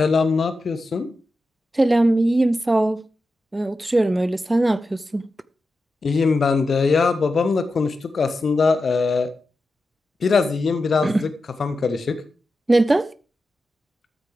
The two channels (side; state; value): both; normal; correlation 0.90